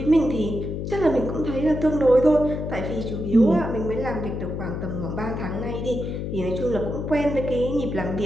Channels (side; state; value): left; noise; hum, 4 dB below the sound